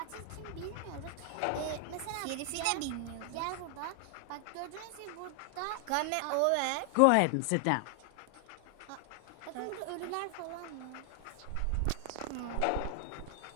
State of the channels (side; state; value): both; different; correlation 0.00